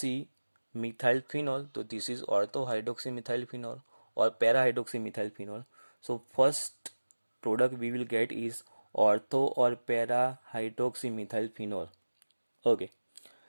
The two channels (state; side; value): inverted; both; correlation -1.00